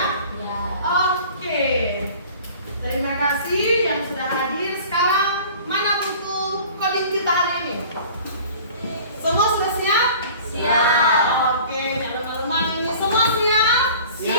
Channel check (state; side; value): inverted; both; correlation -0.45